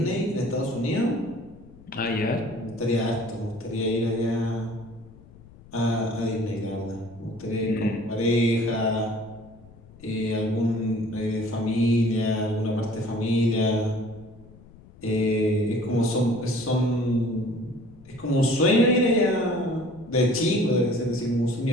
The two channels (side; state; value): left; noise; rumble, 22 dB below the sound